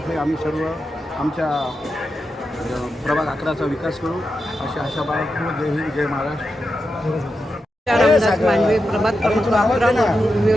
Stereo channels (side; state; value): both; normal; correlation 0.88